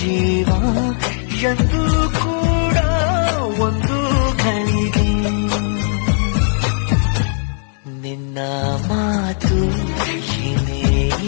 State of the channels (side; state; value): right; silent; digital silence